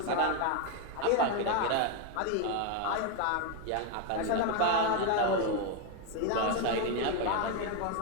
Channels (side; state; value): both; different; correlation 0.01